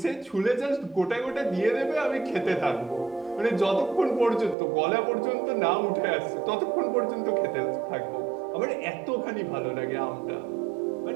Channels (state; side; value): drops out; left; at 4.5 s